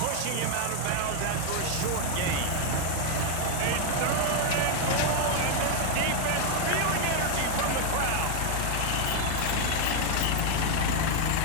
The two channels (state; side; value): different; both; correlation 0.00